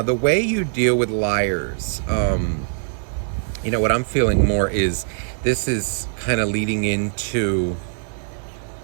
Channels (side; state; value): left; silent; 56 dB below the other